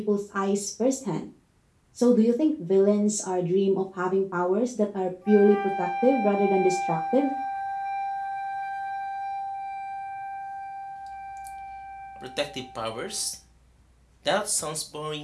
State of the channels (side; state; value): both; identical; correlation 1.00